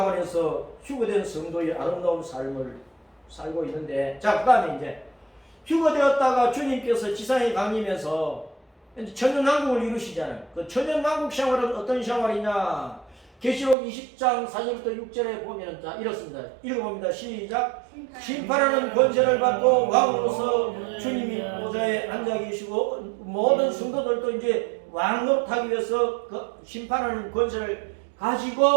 휴거된 성도의 아름다운 삶을 살고 있는데 자 그 다음에 이제 휴거되었다가 주님께서 지상에 강림해서 천연왕국을 이루시잖아요. 그 천연왕국 생활은 어떤 생활이냐? 계시록 20장 4절부터 6절에 보면 자 이렇습니다. 읽어봅니다. 시작. 심판하는 권세를 받고 왕으로서 주님이 보좌에 앉아 계시고 모든 성도들도 이제 왕 노릇하기 위해서 그 심판하는 권세를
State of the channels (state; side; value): drops out; left; at 13.8 s